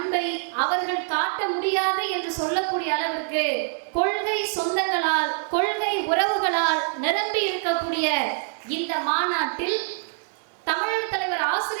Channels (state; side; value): silent; left; 62 dB below the other